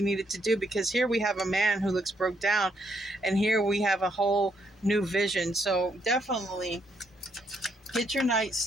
needed to do, because here we have a man who looks broke down, and here we have a whole new vision. So definitely get your night's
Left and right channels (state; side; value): normal; both; correlation 0.74